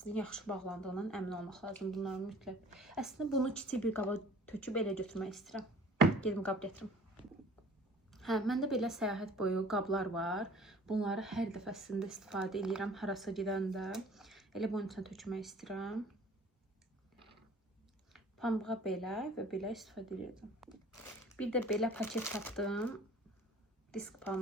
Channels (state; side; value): normal; both; correlation 0.50